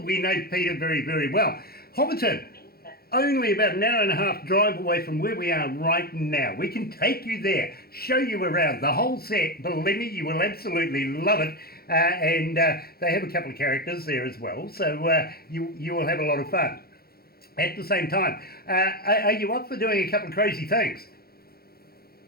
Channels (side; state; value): right; late; 0.44 ms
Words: know Peter very, very well. Hobbiton, only about an hour and a half drive away from where we are right now. We can take you there, show you around the whole set. Believe me, you will absolutely love it. And they have a couple of characters there as well, so you will have a lot of fun. At the same time, are you up for doing a couple of crazy things?